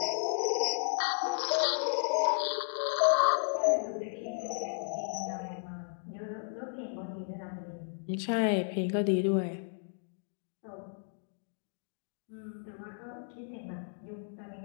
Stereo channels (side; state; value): right; silent; digital silence